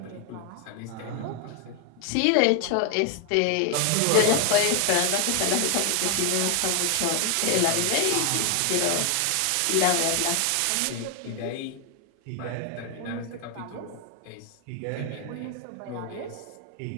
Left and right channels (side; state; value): both; different; correlation 0.00